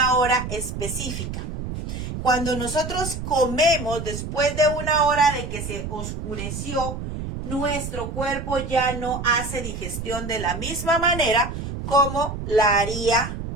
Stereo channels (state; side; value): noise; right; rumble, 6 dB below the sound